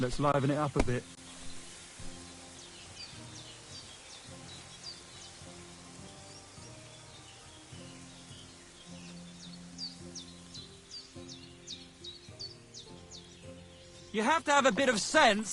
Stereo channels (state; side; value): identical; both; correlation 1.00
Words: liven it up a bit. You have to have a bit of